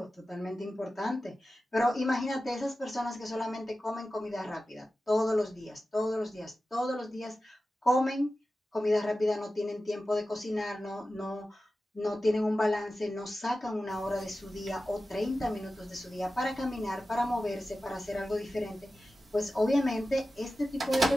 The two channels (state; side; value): normal; both; correlation 0.94